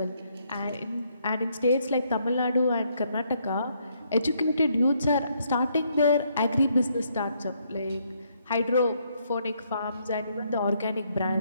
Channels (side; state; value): both; inverted; correlation -0.72